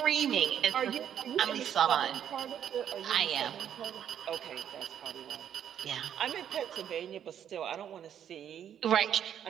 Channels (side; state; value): left; quieter; 9.4 dB